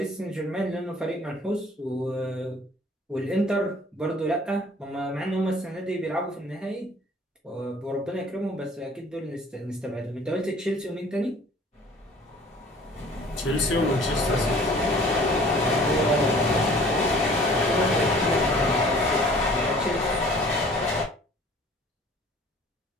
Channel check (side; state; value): both; normal; correlation 0.51